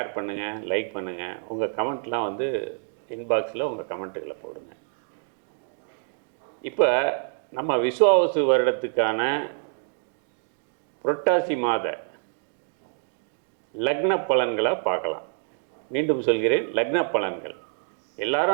பண்ணுங்கள், லைக் பண்ணுங்கள். உங்கள் கமெண்ட்லாம் இன்பாக்ஸில் உங்கள் கமெண்ட்டுகளை போடுங்க. இப்போ நம்ம விஸ்வாவசு வருடத்துக்கான புரட்டாசி மாத லக்ன பலன்களை பார்க்கலாம். மீண்டும் சொல்கிறேன், லக்ன பலன்கள்.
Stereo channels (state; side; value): silent; left; digital silence